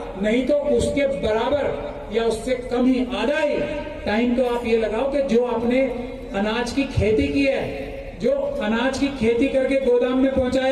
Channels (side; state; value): both; identical; correlation 1.00